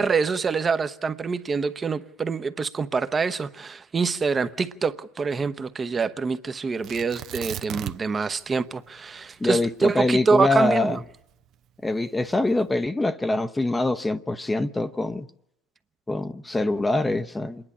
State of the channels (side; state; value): both; normal; correlation 0.88